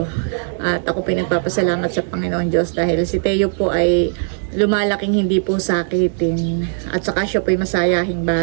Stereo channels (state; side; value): silent; left; digital silence